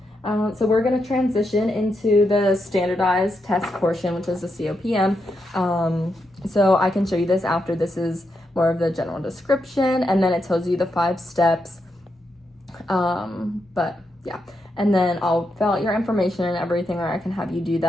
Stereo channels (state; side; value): normal; both; correlation 0.83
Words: So we're going to transition into the standardized test portion, which is the COPM. So I can show you this after. This is more of the general description, and then it tells you the 5 steps. But yeah, and then I'll fill out your information and everything, or I can have you do